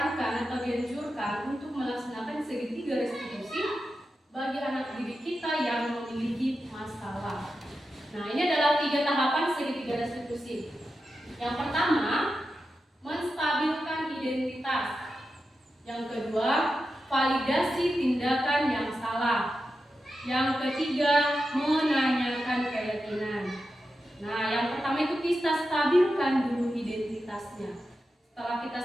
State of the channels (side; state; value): both; normal; correlation 0.90